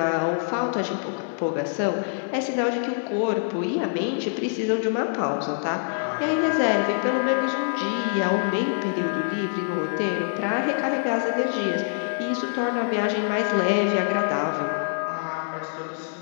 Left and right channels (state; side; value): silent; right; digital silence